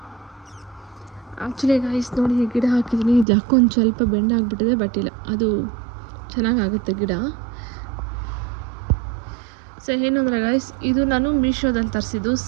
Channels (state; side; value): drops out; left; at 3.2 s